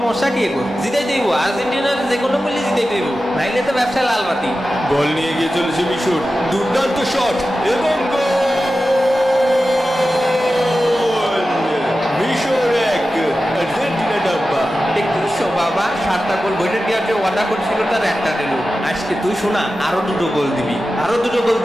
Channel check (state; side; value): normal; both; correlation 0.93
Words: কি এগো? জিতাই দেব, আর্জেন্টিনার যে কোনো বললে জিতাই দেব, নাইলে তো ব্যবসা লাল বাতি। বল নিয়ে গিয়ে চলেছে মিশর, দুর্দান্ত শট এবং গোল! মিশর 1, আর্জেন্টিনা ডাব্বা। দেখছো বাবা, 7টা গোল বইটা দেওয়ার যে ওয়াদা করছিল তার একটা দিল। আজকে তুই শোনা, আরো 2টো গোল দিবি, আরো 2টো গোল